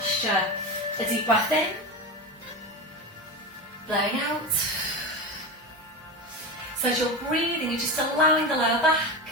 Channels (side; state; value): both; normal; correlation 0.22